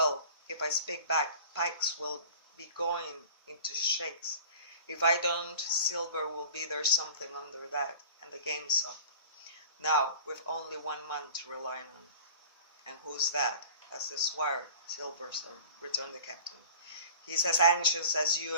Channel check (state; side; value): inverted; both; correlation -0.43